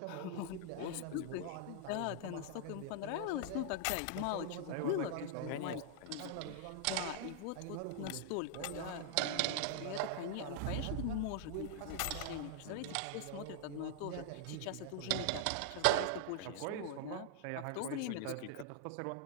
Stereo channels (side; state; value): both; different; correlation 0.00